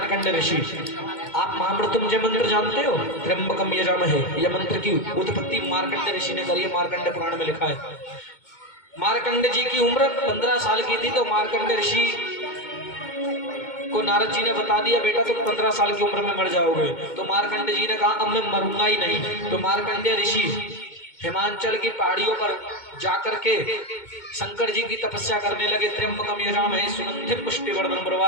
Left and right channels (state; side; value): late; right; 2.2 ms